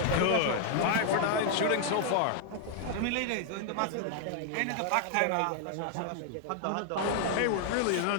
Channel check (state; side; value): different; both; correlation 0.00